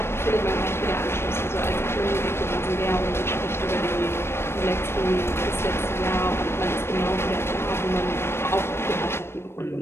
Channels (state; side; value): late; right; 0.12 ms